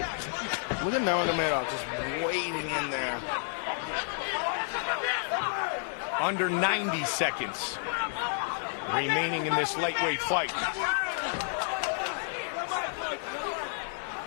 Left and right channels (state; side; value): silent; right; 55 dB below the other